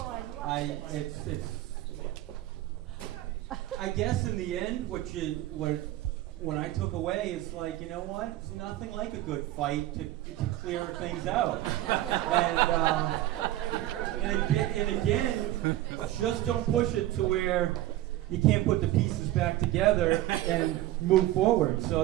I guess in the end, what I took away is like, you know what? It's nothing like a good fight to clear things out. And again, just don't push it to where you can't put the pieces back together and move forward. So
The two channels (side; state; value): left; quieter; 15.2 dB